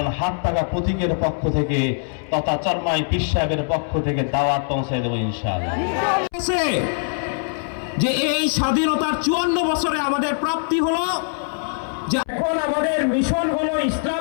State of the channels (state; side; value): silent; right; 64 dB below the other